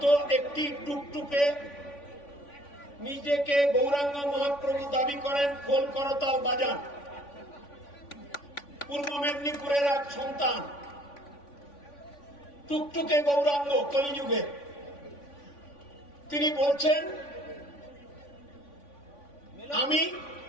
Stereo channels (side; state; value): right; late; 3.5 ms